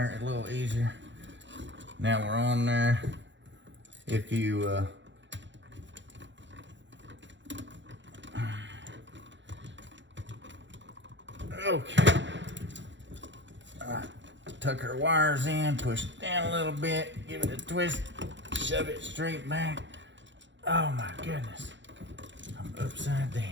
a little easier. Now we're on there. If you okay. All right. Tuck our wires in, push it down a little bit, give it a twist, shove it straight back. Oh my goodness. I'm upside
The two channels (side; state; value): left; late; 0.54 ms